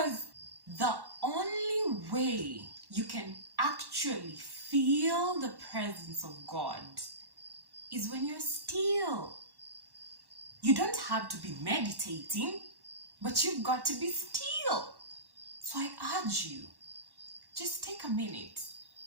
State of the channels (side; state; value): left; late; 1.1 ms